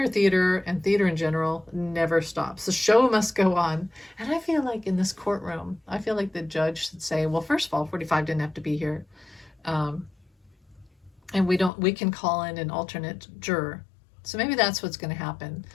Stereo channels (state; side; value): drops out; right; at 11.7 s